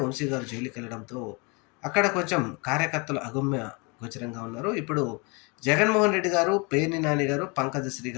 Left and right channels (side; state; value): right; quieter; 30.3 dB